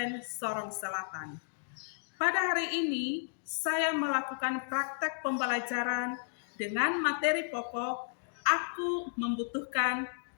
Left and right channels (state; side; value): silent; right; digital silence